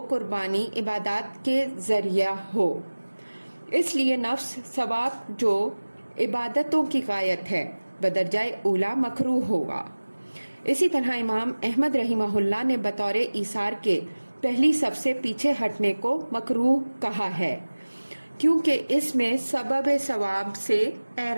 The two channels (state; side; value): inverted; both; correlation -1.00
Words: قربانی عبادات کے ذریعہ ہو، اس لیے نفس ثواب جو عبادتوں کی غایت ہے بدرجہ اولا مکروہ ہوگا۔ اسی طرح امام احمد رحمہ اللہ نے بطور ایثار کے پہلی صف سے پیچھے ہٹنے کو مکروہ کہا ہے، کیونکہ اس میں سبب ثواب سے